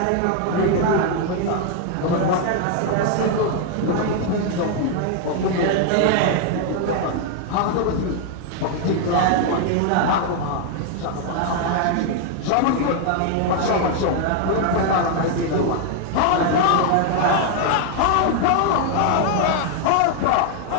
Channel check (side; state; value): both; different; correlation 0.00